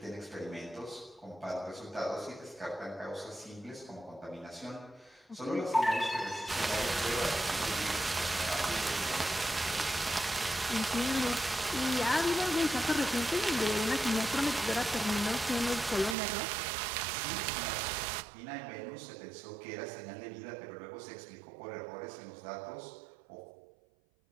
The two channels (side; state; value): left; drops out; at 16.2 s